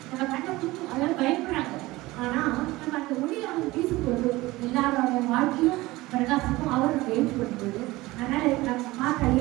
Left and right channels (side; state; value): left; quieter; 19.7 dB